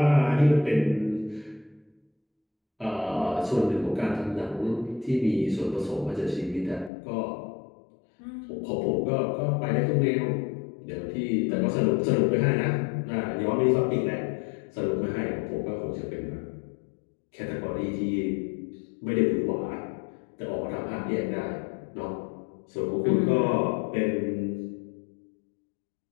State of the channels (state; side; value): drops out; right; at 6.9 s